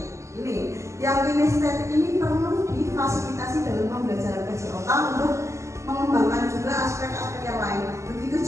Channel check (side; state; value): left; late; 0.14 ms